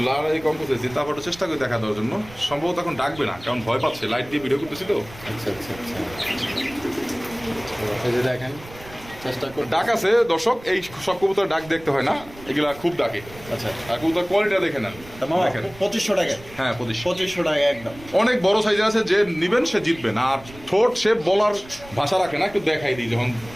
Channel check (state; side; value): noise; right; rumble, 19 dB below the sound